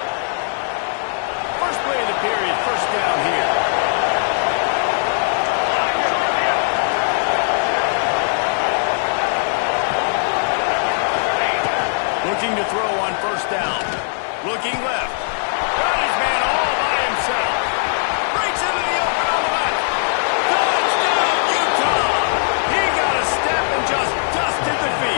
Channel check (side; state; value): right; silent; 66 dB below the other